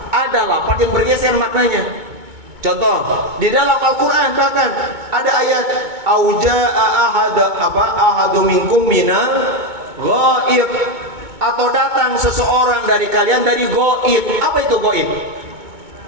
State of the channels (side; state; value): left; late; 2.2 ms